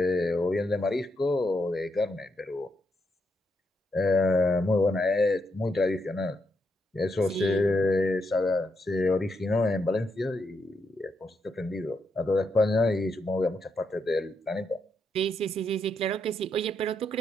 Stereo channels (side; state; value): both; normal; correlation 0.80